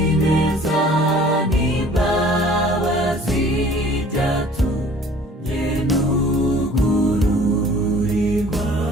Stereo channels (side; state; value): both; normal; correlation 0.50